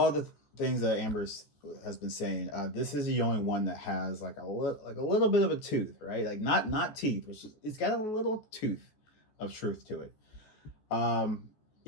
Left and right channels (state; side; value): late; right; 14 ms